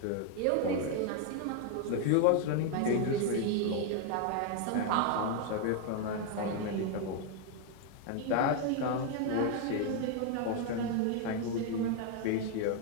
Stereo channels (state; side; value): different; both; correlation 0.01